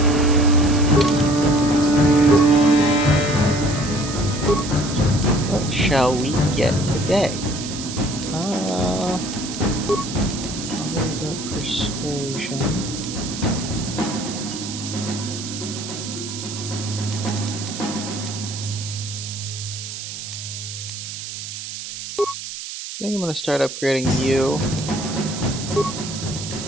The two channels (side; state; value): right; noise; hiss, 8 dB below the sound